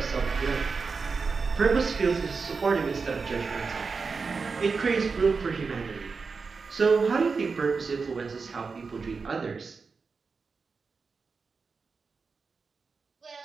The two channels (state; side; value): quieter; left; 4.8 dB